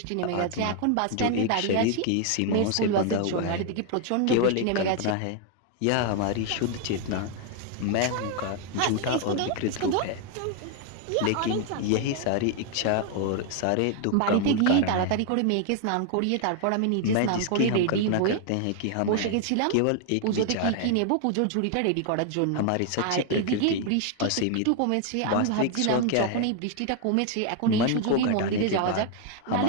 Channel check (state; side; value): different; both; correlation 0.00